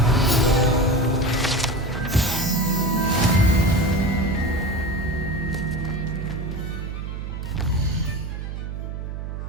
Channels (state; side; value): noise; right; hum, 6 dB below the sound